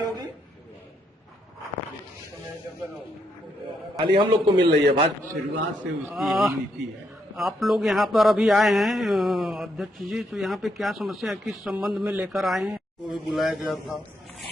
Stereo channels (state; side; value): normal; both; correlation 0.77